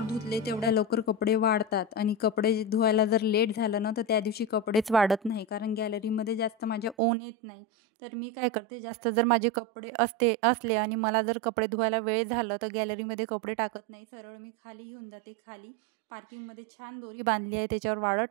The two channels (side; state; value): left; drops out; at 7.0 s